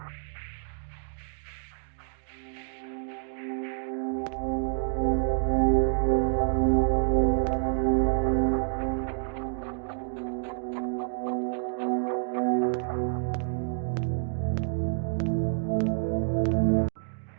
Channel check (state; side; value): silent; left; digital silence